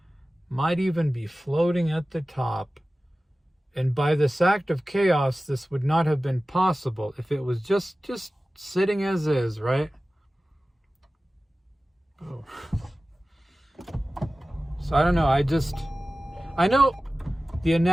might even be floating at the top. And by this act of chaos, this would not have been possible if it was just sitting as is, right? Oh. So I don't know, I know the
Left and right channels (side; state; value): both; normal; correlation 0.96